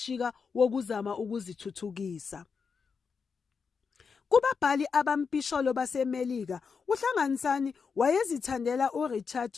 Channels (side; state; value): right; quieter; 5.6 dB